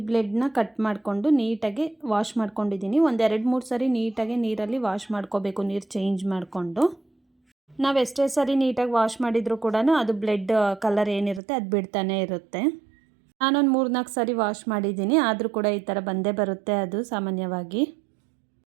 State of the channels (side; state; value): left; drops out; at 11.4 s